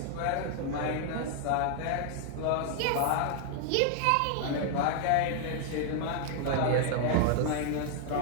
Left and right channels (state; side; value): different; both; correlation 0.00